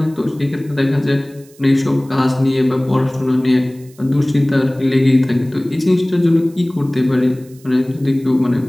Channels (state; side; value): noise; right; hiss, 27 dB below the sound